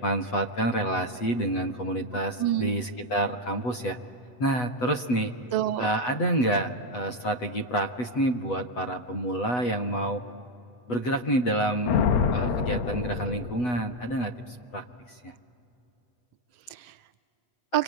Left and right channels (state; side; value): late; right; 8.1 ms